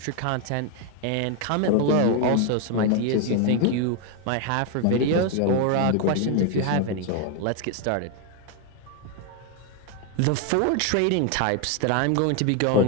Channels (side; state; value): both; different; correlation 0.01